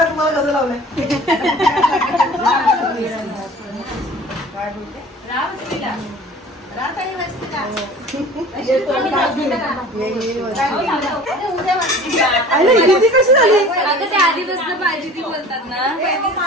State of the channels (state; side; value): normal; both; correlation 0.43